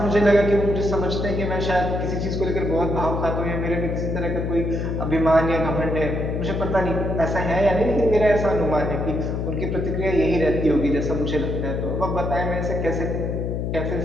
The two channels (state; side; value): noise; left; hum, 2 dB below the sound